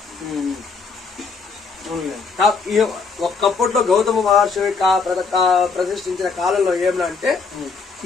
ఒక్కప్పట్లో గౌతమ మహర్షి ప్రతిష్ఠించిన కాలంలో ఏమనంటే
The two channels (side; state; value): right; quieter; 4.8 dB